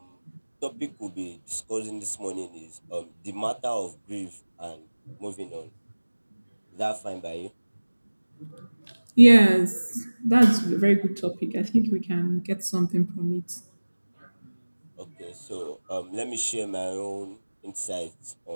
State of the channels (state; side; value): inverted; both; correlation -1.00